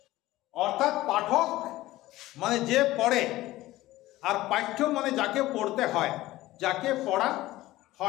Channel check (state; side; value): quieter; right; 16.9 dB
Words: অর্থাৎ পাঠক মানে যে পড়ে, আর পাঠ্য মানে যাকে পড়তে হয়, যাকে পড়া